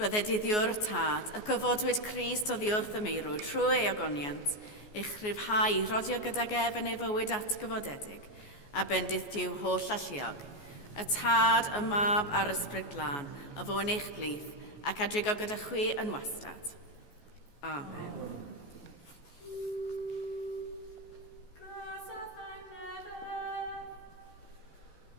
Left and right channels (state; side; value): late; right; 14 ms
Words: diddiwr tad, y gyfodwyd Christ oddi wrth y meirw trwy ei ogoniant, eich rhyfhau rodio gydag ef yn ei fywyd atgyfodedig, a bendith diw holl alluog, y tad, y mab a'r ysbryd glân, a fo yn eich blith, ac adrigo gyda chwi yn wastad. Amen.